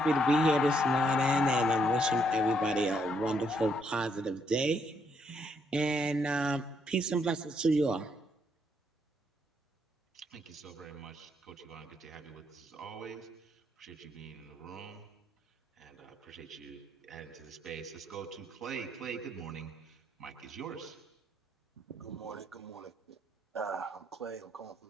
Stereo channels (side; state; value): both; normal; correlation 0.73